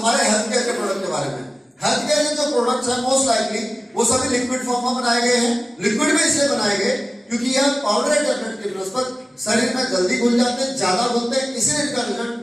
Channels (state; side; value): normal; both; correlation 0.96